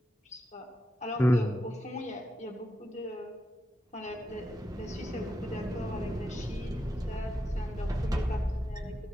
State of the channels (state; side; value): normal; both; correlation 0.86